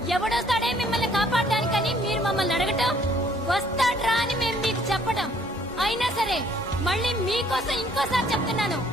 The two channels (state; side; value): normal; both; correlation 0.62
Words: ఎవడొస్తాడే మిమ్మల్ని కాపాడడానికని మీరు మమ్మల్ని అడగటం, వస్తాడ్రా అని మేము మీకు చెప్పడం. అయినా సరే మళ్ళీ మీకోసం ఇంకోసారి చెప్తున్నాను,